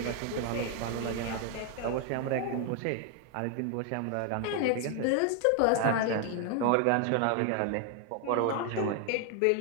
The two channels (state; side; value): different; both; correlation 0.00